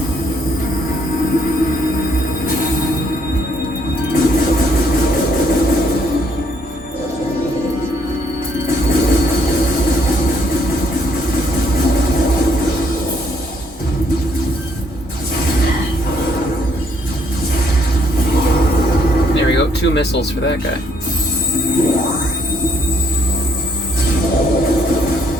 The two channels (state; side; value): normal; both; correlation 0.69